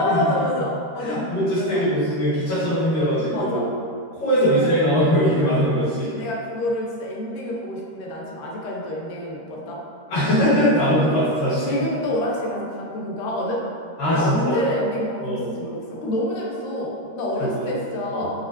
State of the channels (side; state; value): right; late; 13 ms